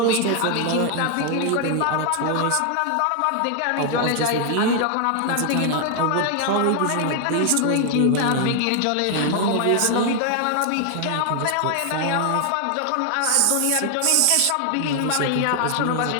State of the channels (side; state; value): both; different; correlation 0.00